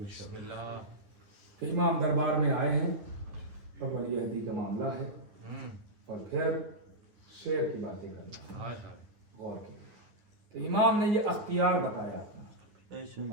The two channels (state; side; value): late; left; 9.9 ms